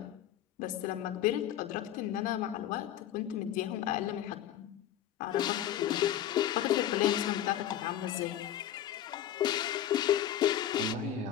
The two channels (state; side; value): quieter; right; 11.1 dB